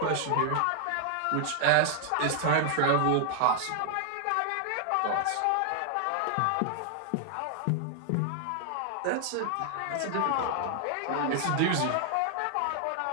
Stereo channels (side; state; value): both; different; correlation 0.00